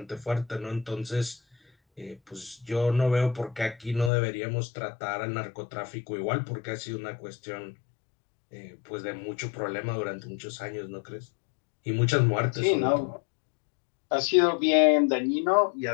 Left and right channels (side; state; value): right; drops out; at 4.1 s